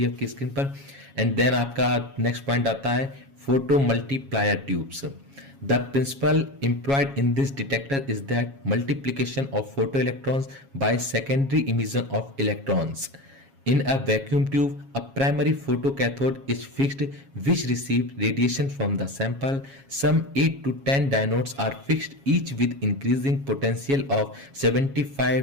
आपकी स्क्रीन पर। एंड देन आपका नेक्स्ट पॉइंट आता है photo multiplier tubes. The principle employed in this detector is that multiplication of photo electrons by secondary emission of electrons. In a vacuum tube, a primary photocathode is fixed which receive radiation from the sample. Some 8 to 10 diodes are fixed, each with increasing potential of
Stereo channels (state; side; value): late; left; 7.3 ms